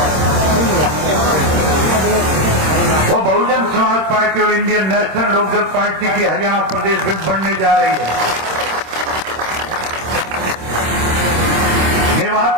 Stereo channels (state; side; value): late; left; 26 ms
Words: वो बहुजन समाज पार्टी और इंडियन नेशनल लोकदल पार्टी की हरियाणा प्रदेश में बनने जा रही है। मेवात